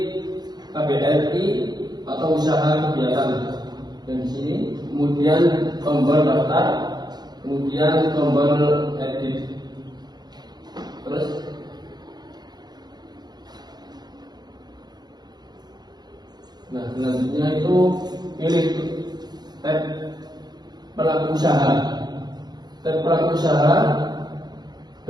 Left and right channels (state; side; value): late; left; 0.20 ms